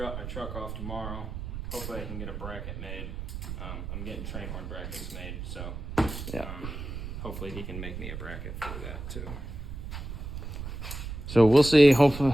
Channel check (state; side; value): noise; right; rumble, 7 dB below the sound